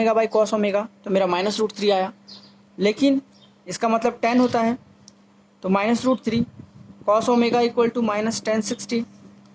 by cos omega, तो मेरा -√3 आया। लेकिन इसका मतलब tan होता है, तो -√3 cos omega equal to -tan60।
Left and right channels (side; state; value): both; identical; correlation 1.00